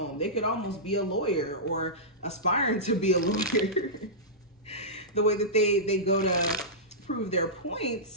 They could almost be a lawyer or aspiring to be a lawyer. The way that they go to prove their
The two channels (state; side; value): normal; both; correlation -0.15